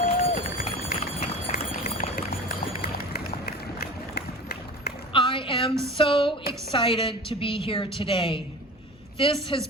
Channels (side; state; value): both; normal; correlation 0.36